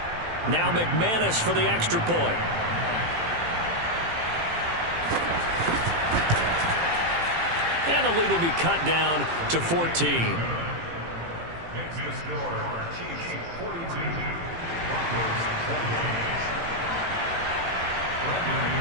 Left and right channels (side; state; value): left; late; 18 ms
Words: Now McManus for the extra point. And the lead will be cut down to 14. Makes the score, Chiefs 42, Broncos 28.